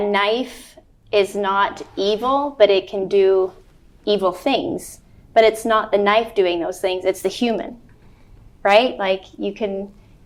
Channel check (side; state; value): both; identical; correlation 1.00